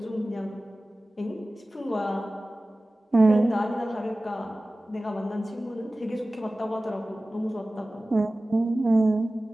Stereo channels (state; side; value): normal; both; correlation 0.97